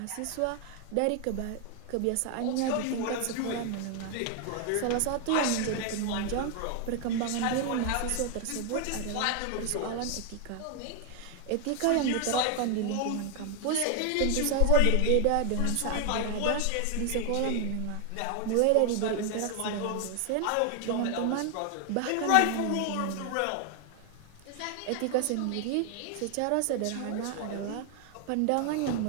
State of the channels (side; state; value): both; different; correlation 0.01